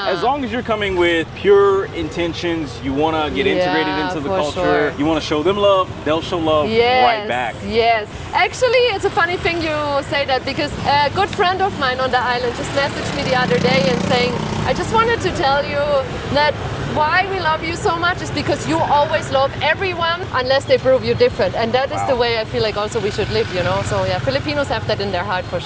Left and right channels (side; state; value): both; identical; correlation 1.00